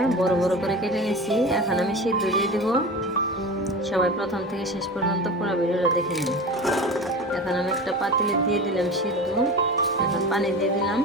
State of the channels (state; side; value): normal; both; correlation 0.31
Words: বড় বড় করে কেটে নিছি। এখন আমি সিদ্ধ দিয়ে দিব। সবাই প্রথম থেকে শেষ পর্যন্ত পুরো ভিডিওটা দেখে নিন। এখন আমি একটা পাতিলে দিয়ে দিলাম সিদ্ধ। এখন পানি দিয়ে দিলাম।